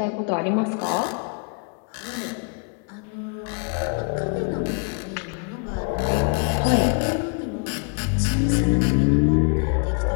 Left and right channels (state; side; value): quieter; right; 38.2 dB